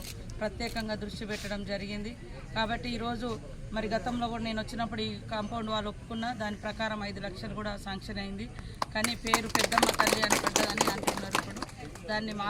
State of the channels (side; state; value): both; identical; correlation 1.00